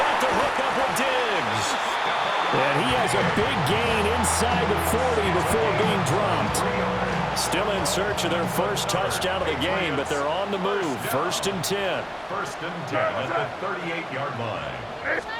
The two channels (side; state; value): both; identical; correlation 1.00